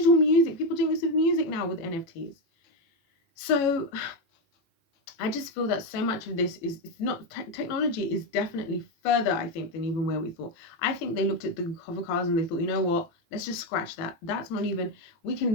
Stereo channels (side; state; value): right; late; 18 ms